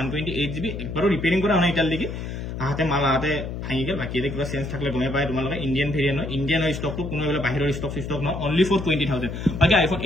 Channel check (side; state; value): left; noise; hum, 6 dB below the sound